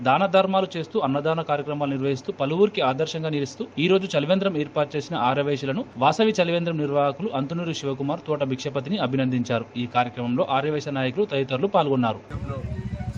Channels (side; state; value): both; identical; correlation 1.00